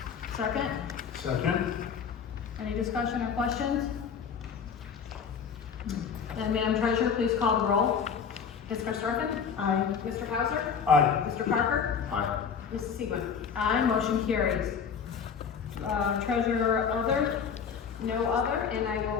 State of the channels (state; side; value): quieter; right; 6.7 dB